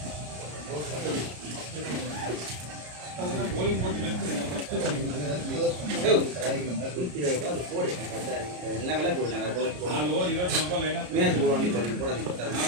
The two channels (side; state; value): left; late; 33 ms